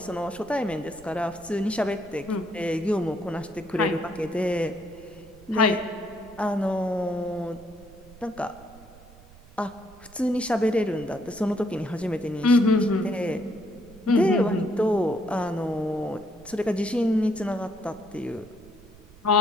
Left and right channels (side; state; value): right; noise; rumble, 22 dB below the sound